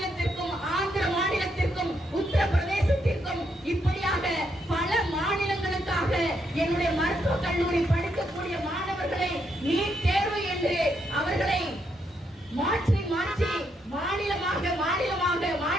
ஆந்திர மாநிலத்திற்கும் உத்தரப்பிரதேசத்திற்கும் இப்படியாக பல மாநிலங்களுக்காக என்னுடைய மருத்துவக் கல்லூரி படிக்கக்கூடிய மாணவர்களை நீட் தேர்வு என்று அவர்களை மாற்றி மாற்றி மாநிலமாக மாநிலமாக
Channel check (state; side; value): normal; both; correlation 0.77